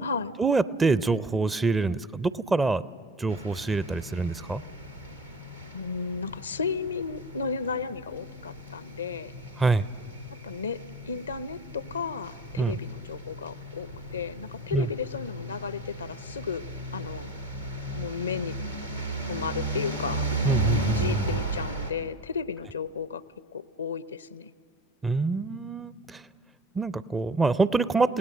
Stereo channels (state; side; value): normal; both; correlation 0.37